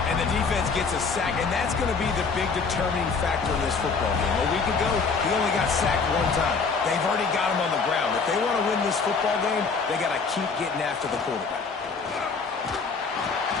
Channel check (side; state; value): right; quieter; 4.9 dB